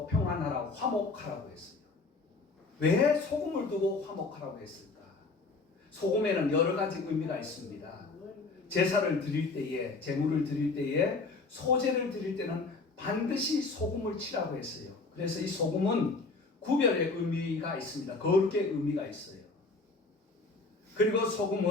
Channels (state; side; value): quieter; right; 3.8 dB